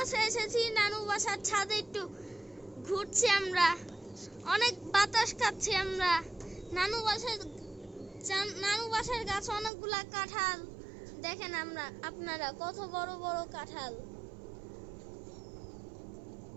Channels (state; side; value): drops out; left; at 9.7 s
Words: এসেছি। নানু বাসার ছাদে একটু ঘুরছি আমরা, অনেক বাতাস খাচ্ছি আমরা। নানু বাসার গাছে অনেকগুলা কাঁঠাল দেখেন আপনারা কত বড় বড় কাঁঠাল।